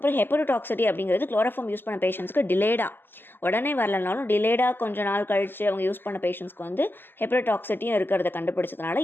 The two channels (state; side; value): late; right; 0.096 ms